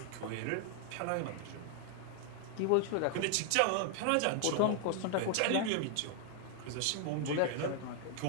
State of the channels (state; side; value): different; both; correlation 0.00